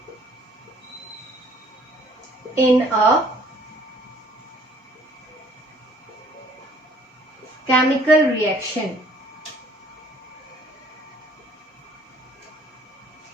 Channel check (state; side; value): normal; both; correlation 0.58